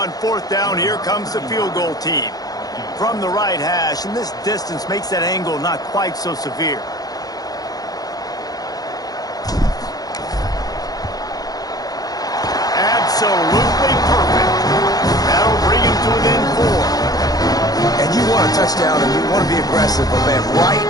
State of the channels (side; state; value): right; late; 0.18 ms